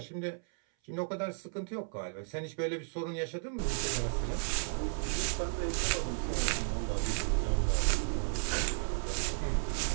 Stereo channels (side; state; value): left; silent; 55 dB below the other